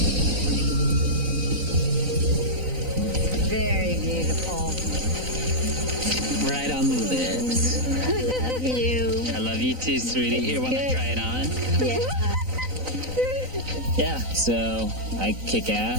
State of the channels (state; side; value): late; left; 3.9 ms